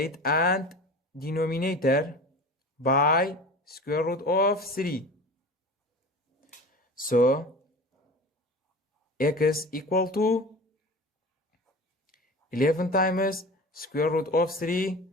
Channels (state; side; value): normal; both; correlation 0.35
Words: and denominator by square root of 3. So x equal to 11 times square root of 3